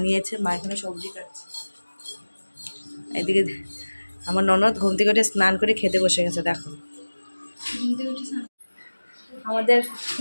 মা এখানে সবজি কাটছে। এদিকে আমার ননদ ঘুম থেকে উঠে স্নান করে খেতে বসে গেছে। দেখো আমাদের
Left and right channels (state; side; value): inverted; both; correlation -1.00